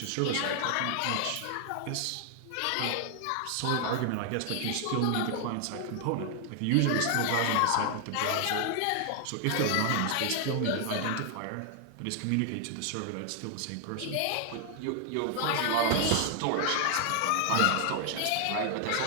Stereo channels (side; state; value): both; different; correlation 0.00